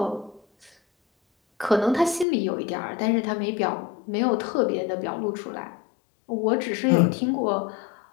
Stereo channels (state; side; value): drops out; right; at 2.2 s